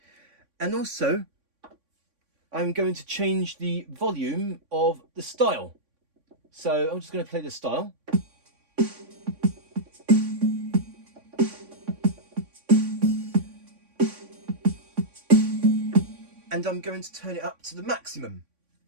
And also, I'm going to change the volume of the style. So I'm just going to play the style. And I'm going to turn it up to the maximum.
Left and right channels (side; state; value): left; late; 3.6 ms